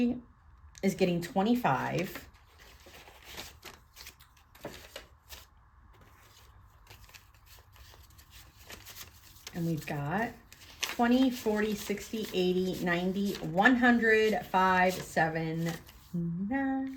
is getting 25. And we've got 20, 40, 60, 80, 90, 100, 5, 7,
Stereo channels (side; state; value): both; identical; correlation 1.00